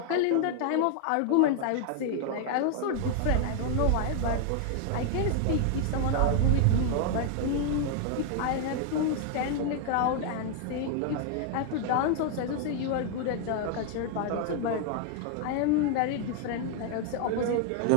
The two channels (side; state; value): both; different; correlation 0.00